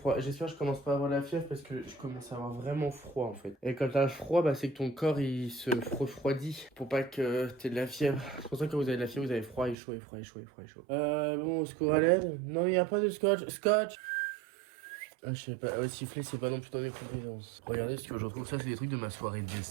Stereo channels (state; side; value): drops out; left; at 9.8 s